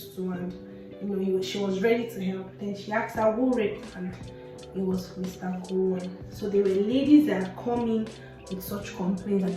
too, and she was ready to help. Then she asked her who raped, and it was Mr. Gowon. So there were ladies that had come in with such complaints that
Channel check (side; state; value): both; identical; correlation 1.00